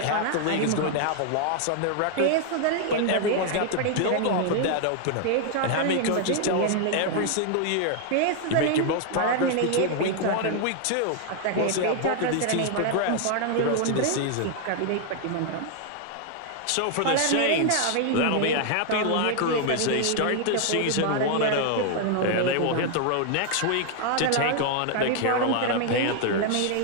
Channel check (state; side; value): different; both; correlation 0.00